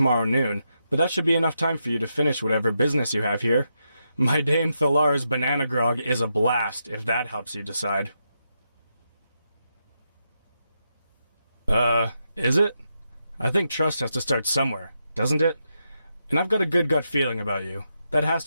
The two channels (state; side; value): inverted; both; correlation -0.84